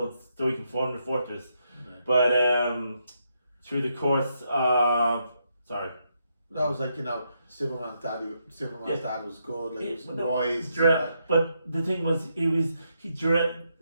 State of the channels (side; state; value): both; inverted; correlation -0.79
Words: so he can form the fortress. But through the course of That was like, Superman's dad was good, like he was wise. But the thing was, I